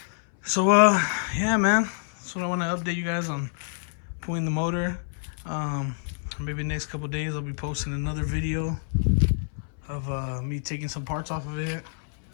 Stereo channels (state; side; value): silent; right; 60 dB below the other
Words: So yeah, man, that's what I want to update you guys on, pulling the motor. Maybe next couple days I'll be posting another video of me taking some parts off of it,